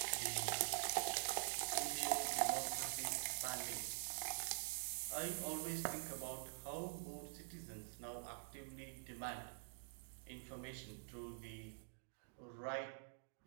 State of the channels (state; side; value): silent; left; digital silence